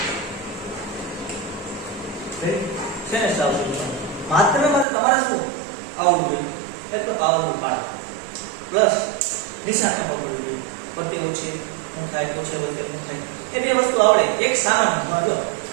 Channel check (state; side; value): drops out; left; at 4.9 s